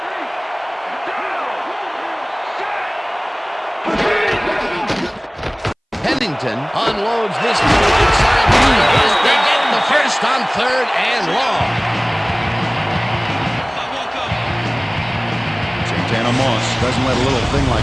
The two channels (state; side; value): identical; both; correlation 1.00